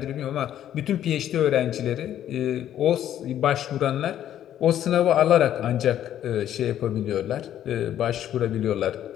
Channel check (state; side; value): quieter; right; 11.1 dB